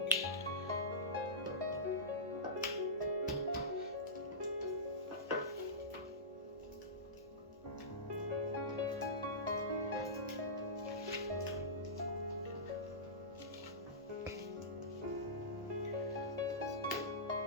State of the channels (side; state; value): both; normal; correlation -0.18